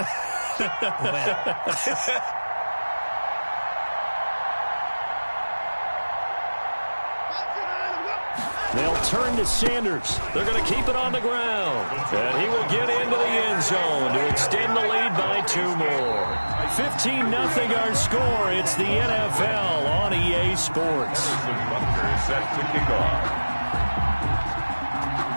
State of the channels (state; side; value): inverted; both; correlation -1.00